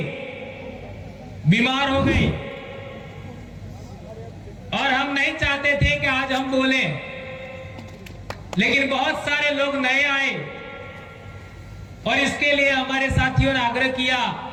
बीमार हो गए और हम नहीं चाहते थे कि आज हम बोलें, लेकिन बहुत सारे लोग नए आए और इसके लिए हमारे साथियों ने आग्रह किया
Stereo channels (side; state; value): both; identical; correlation 1.00